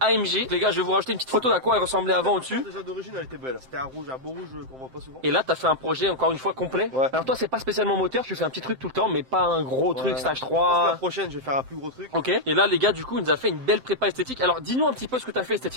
Les gars, je vais vous rajouter une petite photo d'à quoi elle ressemblait avant au-dessus. Déjà d'origine, elle était belle. C'était un rouge, un beau rouge qu'on voit pas souvent. Et là, t'as fait un projet encore une fois complet. Ouais. Alors toi, c'est pas spécialement moteur, tu fais un petit truc tout le temps, mais pas un gros truc stage Je pense que la 3. prochaine, je vais faire un plus gros truc. Ok. Et là, les gars, du coup, il nous a fait une belle prépa esthétique. Alors, dis-nous un petit peu ce que t'as fait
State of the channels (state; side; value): late; left; 7.7 ms